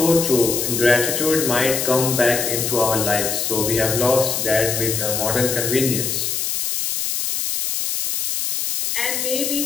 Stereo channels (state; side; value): noise; left; hiss, 1 dB below the sound